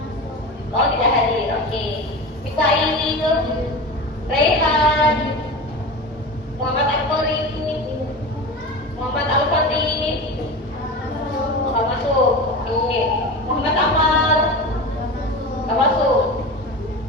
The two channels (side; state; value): both; normal; correlation 0.28